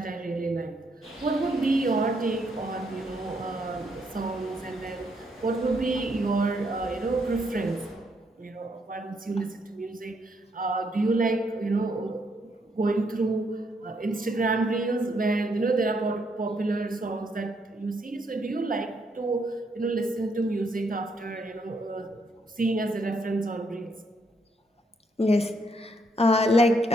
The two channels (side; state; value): both; normal; correlation 0.74